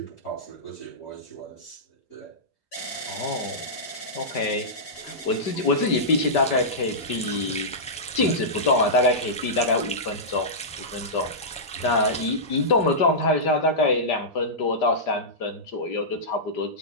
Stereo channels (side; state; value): both; normal; correlation -0.14